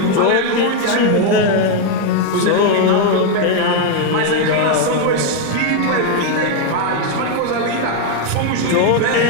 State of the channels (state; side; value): different; both; correlation 0.01